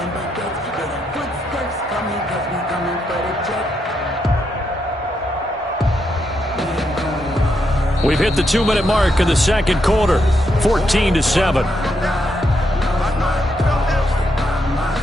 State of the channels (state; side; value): normal; both; correlation 0.80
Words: We've hit the 2-minute mark in the 2nd quarter, 14-7.